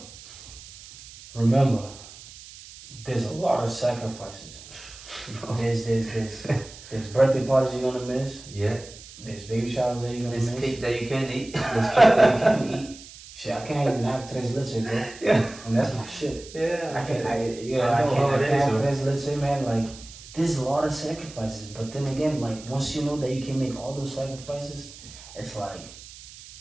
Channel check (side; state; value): right; noise; hiss, 17 dB below the sound